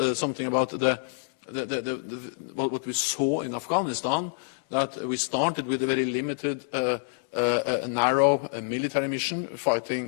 something about what we saw in Afghanistan, that we started with a very limited, narrow military mission,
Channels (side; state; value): right; silent; 60 dB below the other